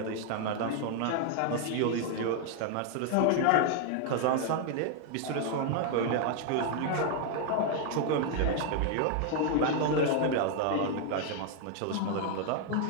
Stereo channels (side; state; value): both; different; correlation 0.00